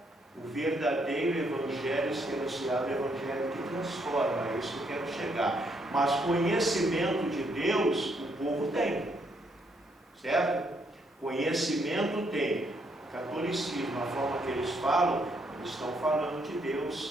o verdadeiro evangelho ser anunciado, o evangelho que transforma. É isso que eu quero chegar. Mas conhecimento de Deus, o povo tem. Certo? Conhecimento tem. Catolicismo, a forma que eles falam, eles estão falando de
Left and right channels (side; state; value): both; normal; correlation 0.73